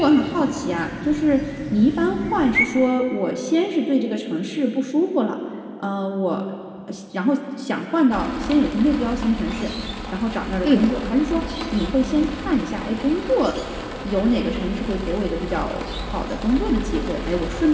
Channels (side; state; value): both; identical; correlation 1.00